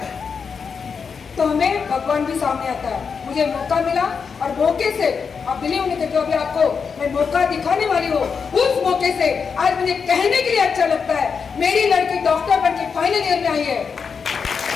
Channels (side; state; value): right; quieter; 5.9 dB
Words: तो हमें भगवान भी सामने आता है। मुझे मौका मिला और मौके से, आप बिलीव नहीं करते, अभी आपको मैं मौका दिखाने वाली हूँ, उस मौके से आज मुझे कहने के लिए अच्छा लगता है, मेरी लड़की डॉक्टर बनके फाइनल ईयर में आई है।